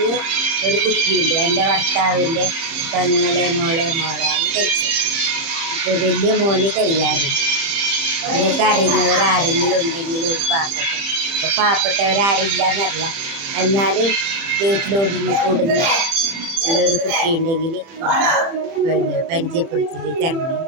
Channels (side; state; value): left; late; 30 ms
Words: ഒരു കുട്ടിയുണ്ട്. എൻ്റെ ഭർത്താവിൻ്റെ മോളെയാണ് കഴിച്ചത്. ഇപ്പോൾ വലിയ മോന് കഴിയാറുണ്ട്. നിങ്ങൾക്ക് അറിയുന്നവരാരെങ്കിലും ഉണ്ടെങ്കിൽ ഒരു ഇപ്പോൾ പാവപ്പെട്ടവരാരില്ലെന്നറിയാം. എന്നാലും വീട്ടിലൊതുങ്ങി കൂടുന്ന ഉള്ളൊരു കുട്ടി ഉണ്ടെങ്കിൽ പിന്നെ പരിചയപ്പെടുത്തി തരണം.